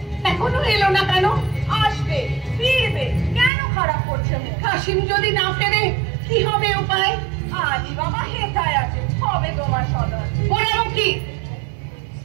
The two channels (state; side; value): drops out; left; at 3.5 s